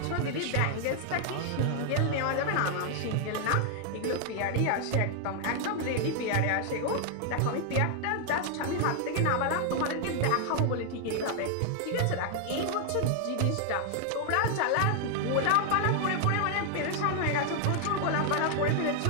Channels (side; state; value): both; different; correlation 0.00